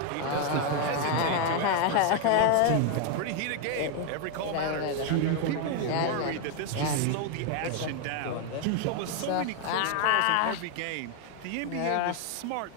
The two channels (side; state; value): both; different; correlation 0.01